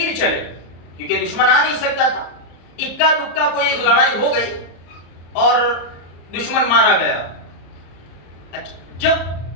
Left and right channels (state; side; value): late; right; 34 ms